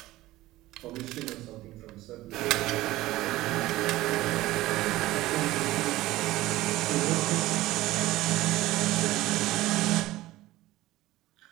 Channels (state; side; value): quieter; left; 17.1 dB